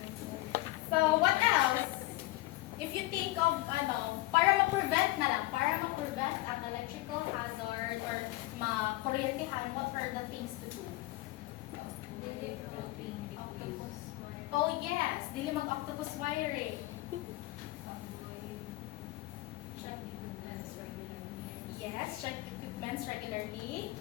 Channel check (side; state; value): right; quieter; 18.8 dB